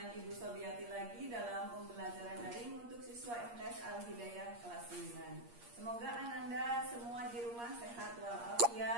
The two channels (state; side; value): late; left; 8.5 ms